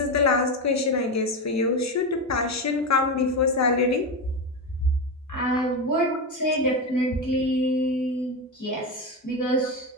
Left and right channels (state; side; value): normal; both; correlation 0.16